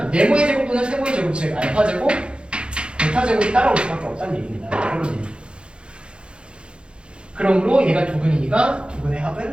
네모의 제곱 또는 세모의 제곱 즉 알파 제곱, 베타 제곱이 따라올 수밖에 없다는 얘기입니다. 그런 얘기. 그러므로 얘가 두 근이니까 두 근의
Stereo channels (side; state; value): left; late; 0.055 ms